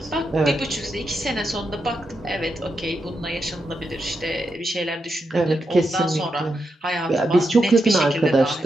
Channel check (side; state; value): both; normal; correlation 0.85